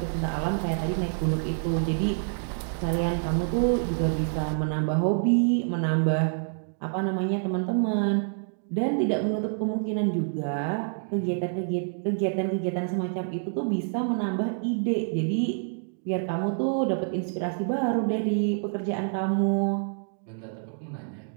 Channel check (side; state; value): left; silent; digital silence